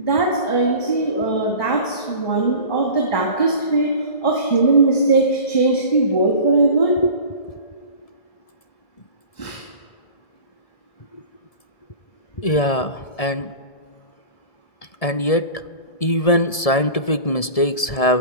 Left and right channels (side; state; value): right; late; 1.7 ms